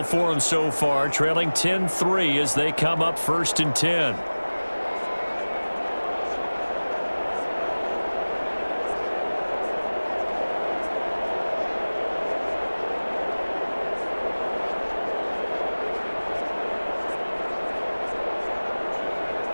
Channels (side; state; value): both; inverted; correlation -1.00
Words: for them so far, trailing 10-3 as they come up first and 10.